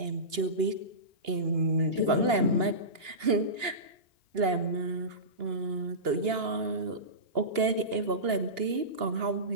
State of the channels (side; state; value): left; late; 2.8 ms